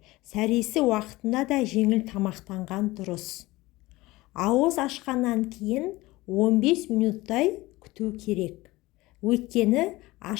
сәресі уақытында да жеңіл тамақтанған дұрыс. Ауыз ашқаннан кейін 15 минуттай күту керек. Өйткені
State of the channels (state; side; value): quieter; right; 19.9 dB